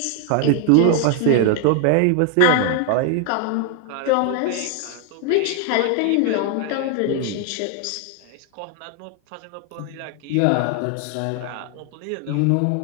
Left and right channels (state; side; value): different; both; correlation 0.00